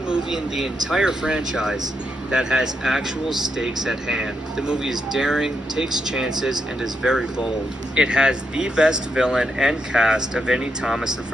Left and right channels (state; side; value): normal; both; correlation 0.82